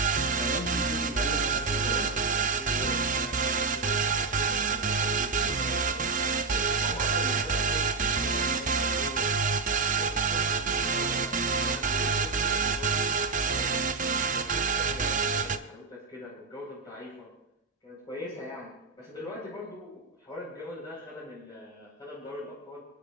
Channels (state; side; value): quieter; left; 4.2 dB